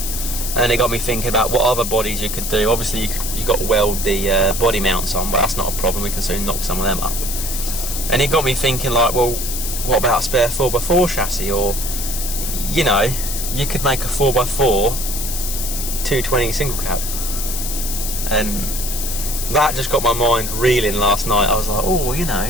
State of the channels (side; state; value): left; noise; hiss, 5 dB below the sound